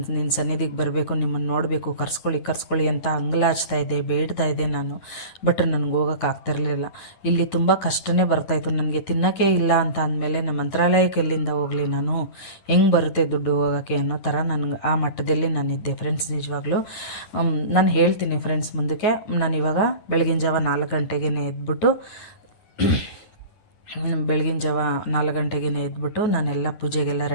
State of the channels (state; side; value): late; right; 9.7 ms